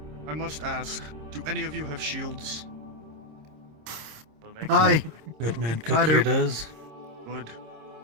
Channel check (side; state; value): left; late; 26 ms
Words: I must ask, do any of you have shields? Aye. Good man I Cook do. here does. Good.